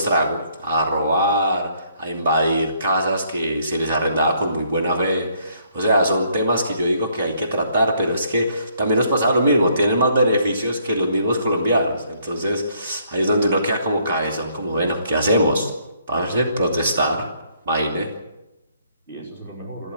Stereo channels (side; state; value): both; inverted; correlation -0.67